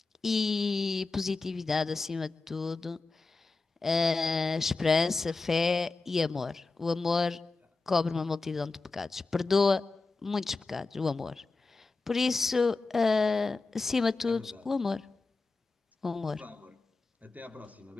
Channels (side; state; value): right; quieter; 3.7 dB